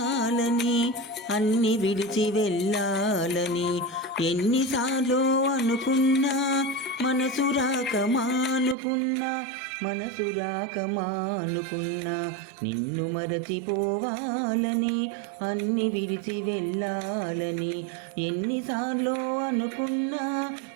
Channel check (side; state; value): left; drops out; at 8.8 s